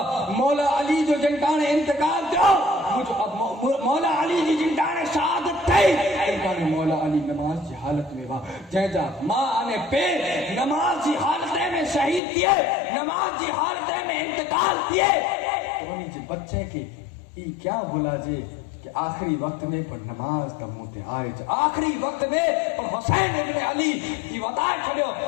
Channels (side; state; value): right; drops out; at 12.2 s